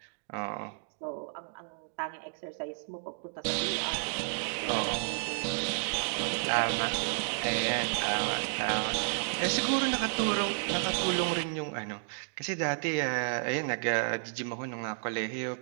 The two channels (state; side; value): silent; left; digital silence